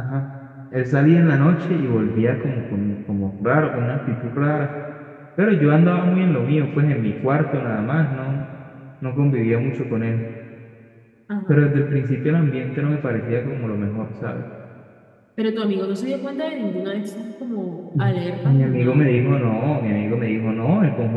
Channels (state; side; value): identical; both; correlation 1.00